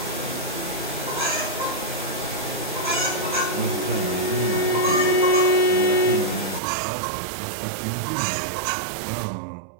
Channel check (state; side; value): drops out; left; at 6.6 s